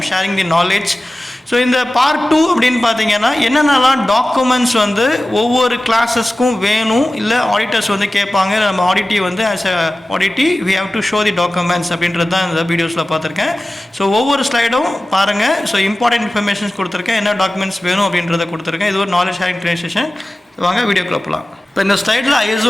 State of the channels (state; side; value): normal; both; correlation 0.96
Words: sharing the knowledge. So இந்த பார்ட் 2 அப்படின்னு பார்த்தீங்கன்னா என்னென்னலாம் டாக்குமெண்ட்ஸ் வந்து ஒவ்வொரு கிளாஸஸ்க்கும் வேணும், இல்லை ஆடிட்டர்ஸ் வந்து கேட்பாங்க, நம்ம ஆடிட்டி வந்து as a auditee we have to show the documents அப்படின்றது தான் இந்த வீடியோஸில் பார்த்துருக்கேன். ஸோ ஒவ்வொரு ஸ்லைடும் பாருங்கள். ஸோ இம்பார்ட்டன்ட் இன்ஃபர்மேஷன்ஸ் கொடுத்துருக்கேன், என்ன டாக்குமெண்ட்ஸ் வேணும் அப்படின்றத கொடுத்துருக்கேன். இது ஒரு நாலேஜ் ஷேரிங் ட்ரெயினிங் செஷன். வாங்க வீடியோக்குள்ள போகலாம். இப்போ இந்த ஸ்லைடில்